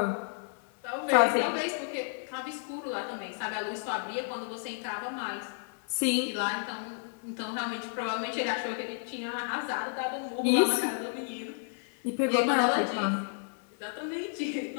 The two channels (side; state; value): right; silent; 57 dB below the other